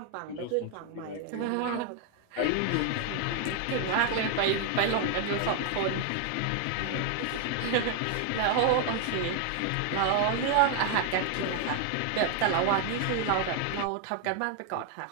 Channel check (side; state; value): both; different; correlation 0.00